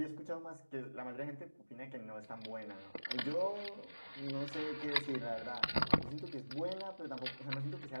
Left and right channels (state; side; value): inverted; both; correlation -1.00